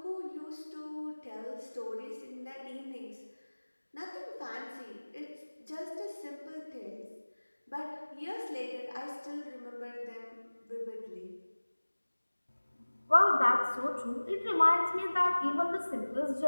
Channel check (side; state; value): both; inverted; correlation -1.00